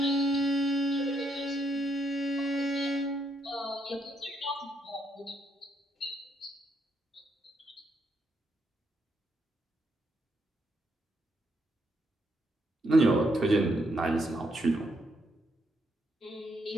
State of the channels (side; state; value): both; normal; correlation 0.76